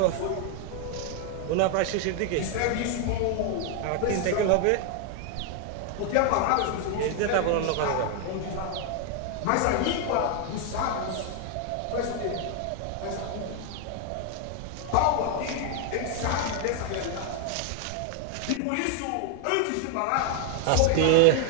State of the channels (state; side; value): different; both; correlation 0.00